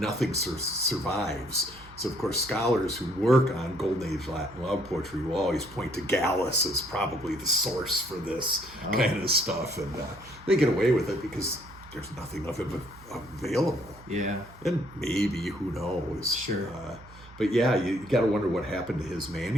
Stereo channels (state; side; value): noise; right; hum, 21 dB below the sound